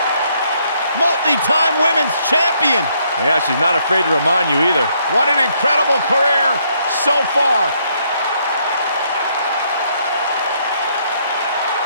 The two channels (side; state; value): both; inverted; correlation -0.71